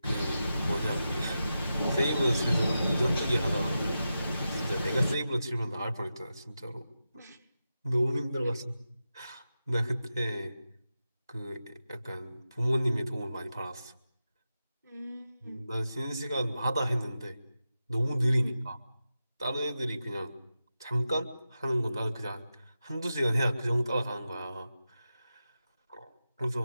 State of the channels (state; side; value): inverted; both; correlation -0.91